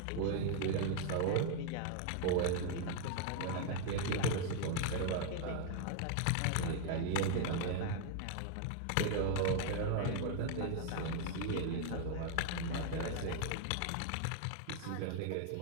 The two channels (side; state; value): both; different; correlation 0.00